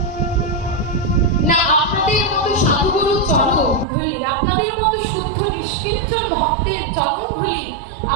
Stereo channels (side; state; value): left; drops out; at 3.9 s